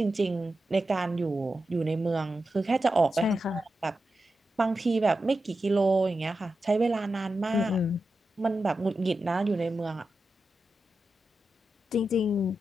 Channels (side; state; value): both; normal; correlation 0.90